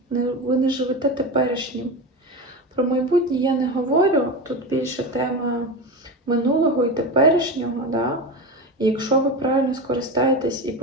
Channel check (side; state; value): both; normal; correlation 0.22